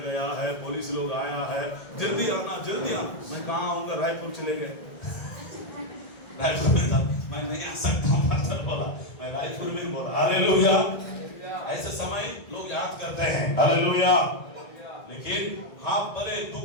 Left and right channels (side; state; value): right; late; 1.8 ms